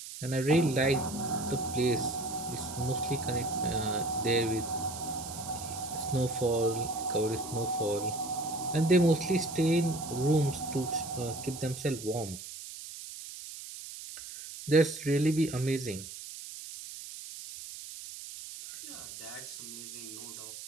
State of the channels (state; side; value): noise; right; hiss, 11 dB below the sound